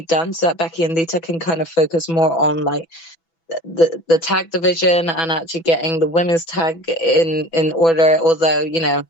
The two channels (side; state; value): right; late; 6.0 ms